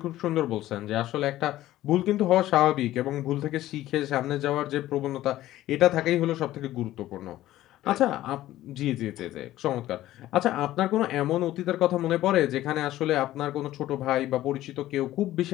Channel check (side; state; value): right; quieter; 14.7 dB